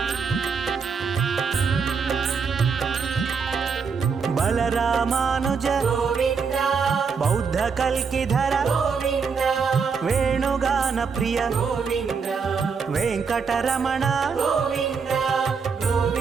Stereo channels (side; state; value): left; quieter; 5.6 dB